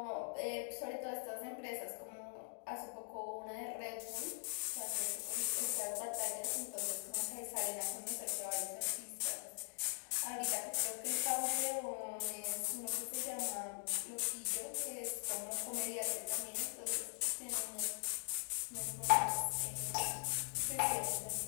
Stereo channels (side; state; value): right; silent; digital silence